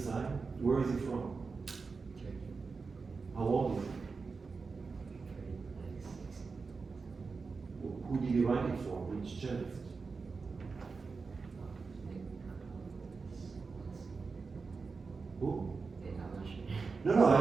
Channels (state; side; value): quieter; left; 4.6 dB